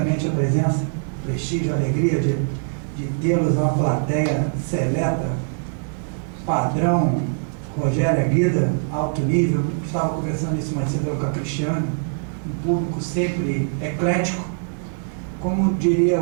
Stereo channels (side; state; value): left; silent; 64 dB below the other